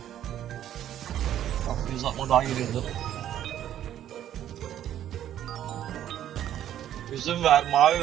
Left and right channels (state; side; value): quieter; left; 11.3 dB